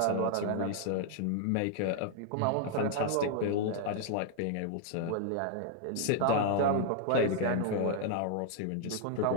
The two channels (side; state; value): both; different; correlation 0.00